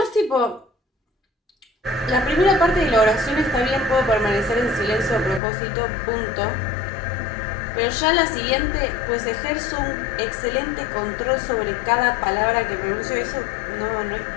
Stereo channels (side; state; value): right; drops out; at 5.4 s